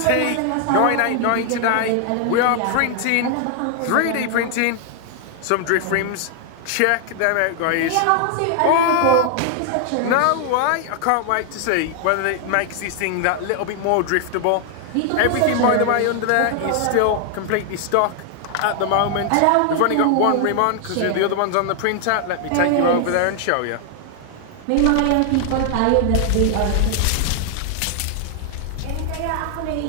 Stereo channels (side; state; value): both; different; correlation 0.00